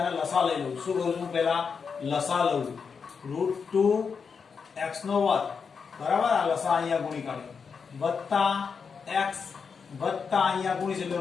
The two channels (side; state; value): right; quieter; 5.8 dB